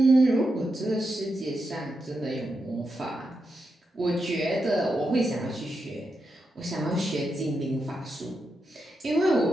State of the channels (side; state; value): both; normal; correlation 0.86